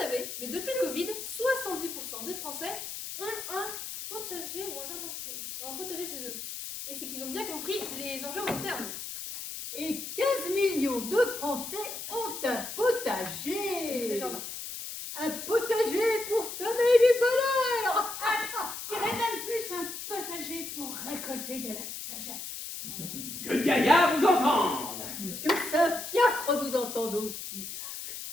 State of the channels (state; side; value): noise; left; hiss, 8 dB below the sound